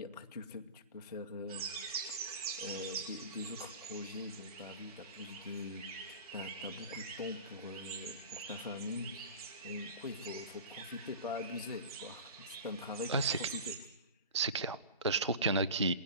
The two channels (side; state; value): both; inverted; correlation -0.34